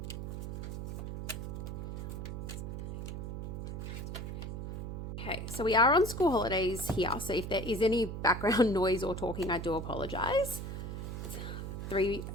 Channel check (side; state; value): right; noise; hum, 5 dB below the sound